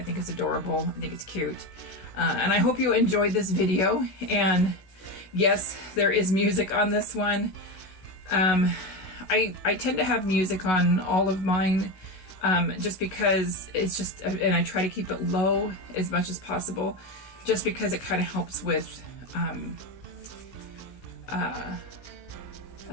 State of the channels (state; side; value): late; right; 16 ms